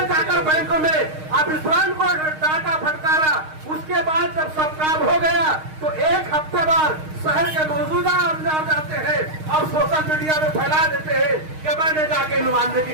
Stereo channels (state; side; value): late; left; 6.4 ms